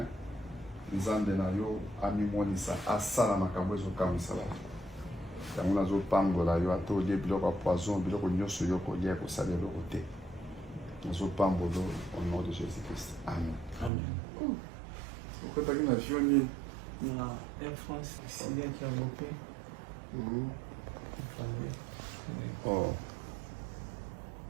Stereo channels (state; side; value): drops out; left; at 13.9 s